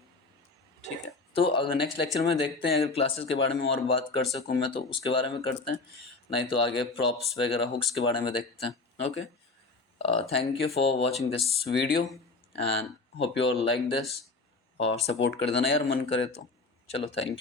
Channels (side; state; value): right; quieter; 3.7 dB